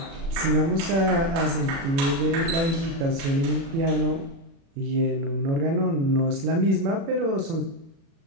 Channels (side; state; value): left; late; 36 ms